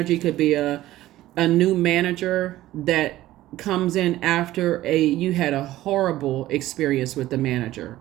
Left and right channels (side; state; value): left; quieter; 15.3 dB